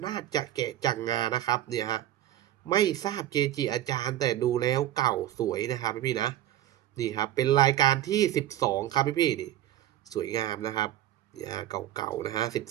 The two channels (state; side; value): quieter; left; 13.0 dB